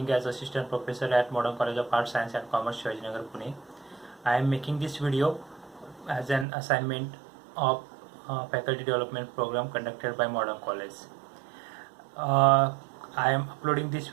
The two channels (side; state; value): left; drops out; at 6.5 s